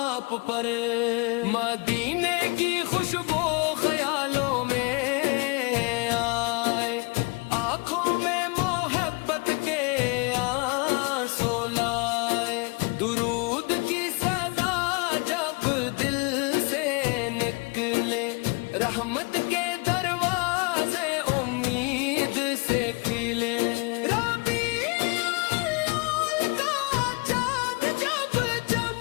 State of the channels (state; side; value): quieter; right; 30.1 dB